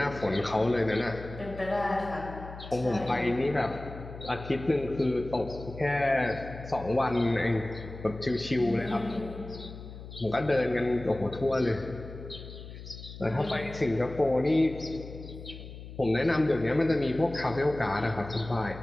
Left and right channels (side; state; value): left; noise; hum, 13 dB below the sound